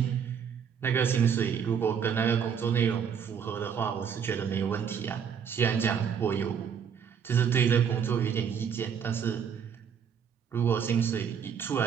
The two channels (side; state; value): left; quieter; 7.4 dB